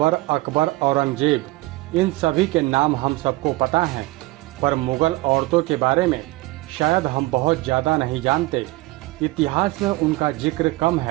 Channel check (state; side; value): quieter; left; 20.4 dB